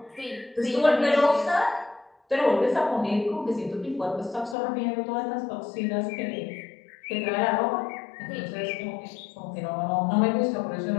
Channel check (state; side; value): drops out; right; at 4.5 s